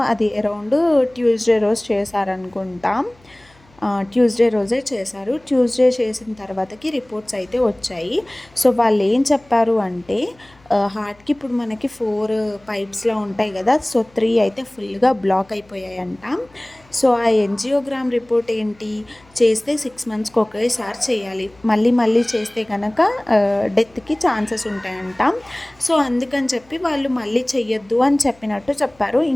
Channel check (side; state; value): left; noise; hum, 29 dB below the sound